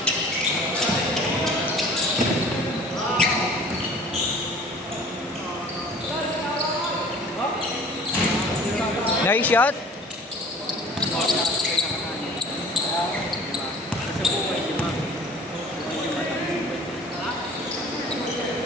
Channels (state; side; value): normal; both; correlation 0.47